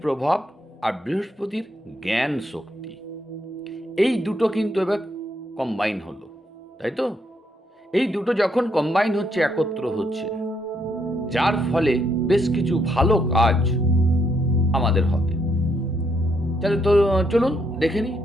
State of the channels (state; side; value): normal; both; correlation 0.75